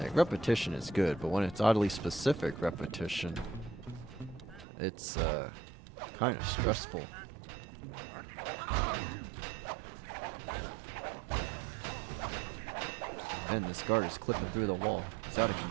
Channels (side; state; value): left; drops out; at 4.7 s